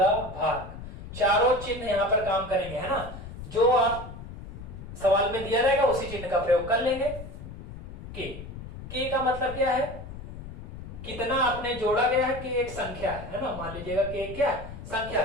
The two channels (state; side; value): noise; left; rumble, 12 dB below the sound